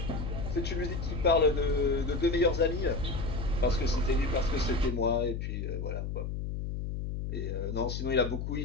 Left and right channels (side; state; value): left; noise; hum, 4 dB below the sound